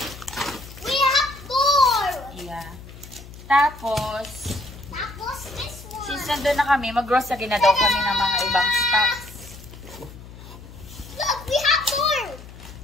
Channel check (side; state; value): left; noise; hum, 16 dB below the sound